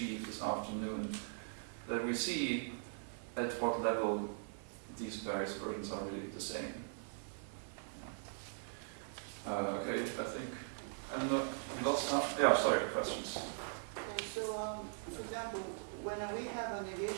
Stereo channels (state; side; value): silent; left; 51 dB below the other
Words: this afternoon, that we see at what level these various versions are really the same. Okay, I don't know, we lost half? Yeah, sorry, questions. Okay, so, for example, when we have a